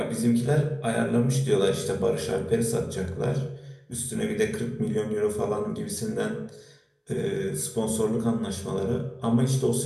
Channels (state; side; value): identical; both; correlation 1.00